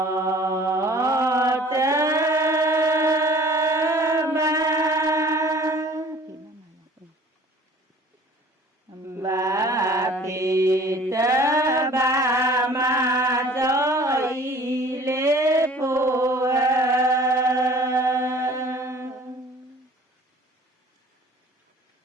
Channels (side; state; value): both; normal; correlation 0.49